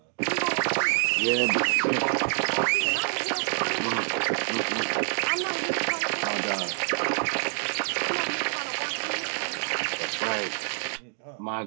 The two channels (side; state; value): left; silent; 58 dB below the other